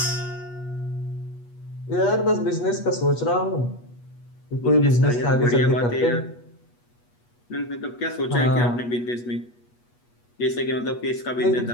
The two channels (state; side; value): late; right; 8.3 ms